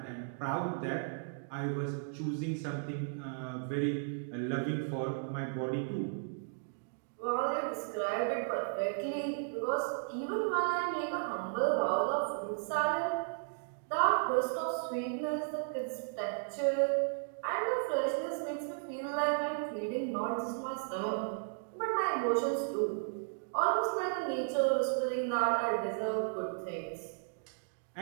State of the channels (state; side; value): silent; left; digital silence